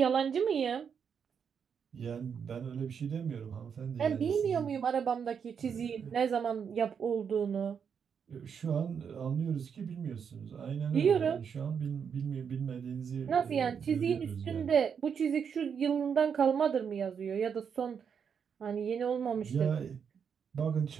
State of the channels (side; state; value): left; quieter; 7.0 dB